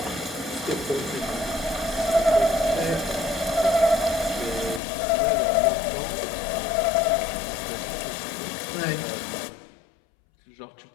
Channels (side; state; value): right; drops out; at 4.8 s